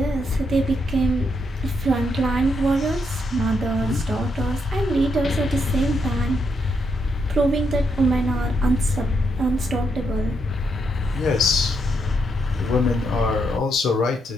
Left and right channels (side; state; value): both; normal; correlation 0.79